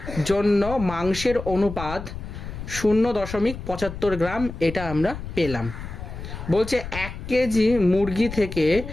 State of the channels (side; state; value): left; noise; rumble, 9 dB below the sound